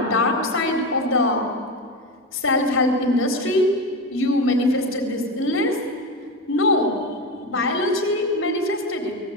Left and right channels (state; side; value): normal; both; correlation 0.19